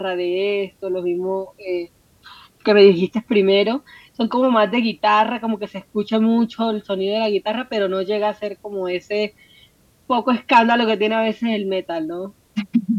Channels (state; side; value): identical; both; correlation 1.00